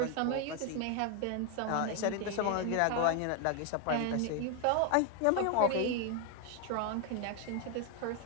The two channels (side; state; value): both; different; correlation 0.01